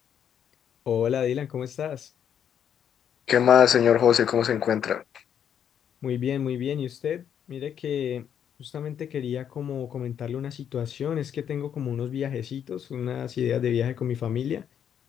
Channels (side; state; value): right; quieter; 8.8 dB